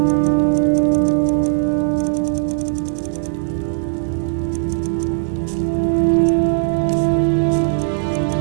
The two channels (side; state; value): left; silent; 67 dB below the other